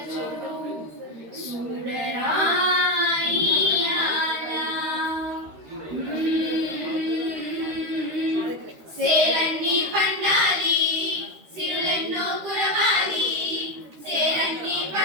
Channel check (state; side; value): late; left; 13 ms